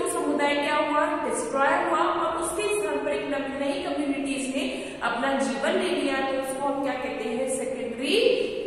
समुदाय क्या हुआ, डिस्ट्रॉय हुआ, और उसके स्थान पर एक नई कम्युनिटीज ने अपना जीवन ले लिया, तो उसको हम क्या कहते हैं, सेकेंडरी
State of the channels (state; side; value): identical; both; correlation 1.00